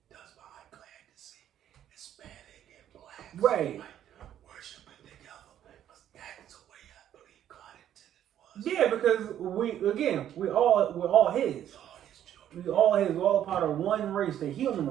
does my eye glad to see Hispanic and blacks Right. worshiping together, because that is the way I believe God intended for us. Yeah, because we're all his. All his children. We all his. We're all a part of one race, the human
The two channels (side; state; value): left; quieter; 10.9 dB